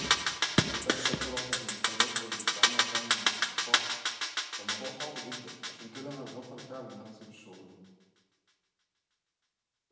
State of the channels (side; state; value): both; identical; correlation 1.00